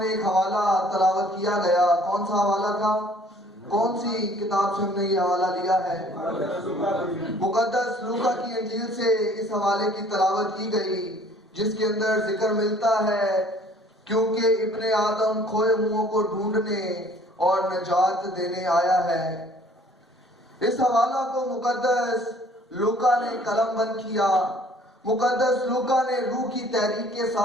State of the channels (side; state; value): both; normal; correlation 0.56